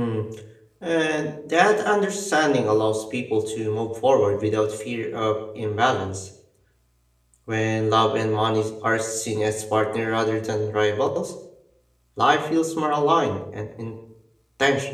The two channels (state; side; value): identical; both; correlation 1.00